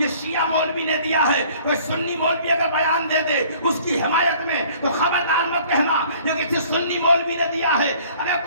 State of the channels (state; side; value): inverted; both; correlation -0.54